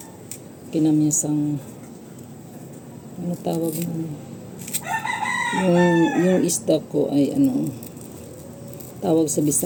kinamyasang, tawag mo. Yung isda ko ay tawag sa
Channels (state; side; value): identical; both; correlation 1.00